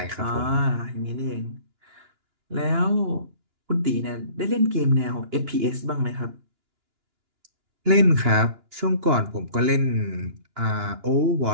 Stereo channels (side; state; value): left; late; 2.9 ms